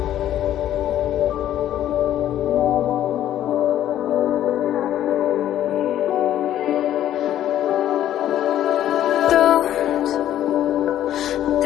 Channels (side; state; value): right; quieter; 11.9 dB